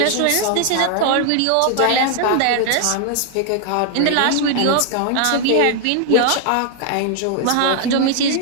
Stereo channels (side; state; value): both; different; correlation 0.00